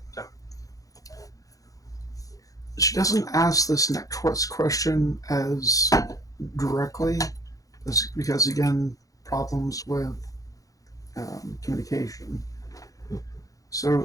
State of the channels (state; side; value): late; right; 0.17 ms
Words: so she doesn't ask this next question as directly because again, problems with communication. So,